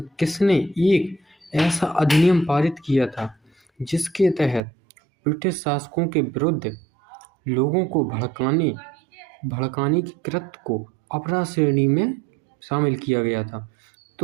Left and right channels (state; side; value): drops out; left; at 4.6 s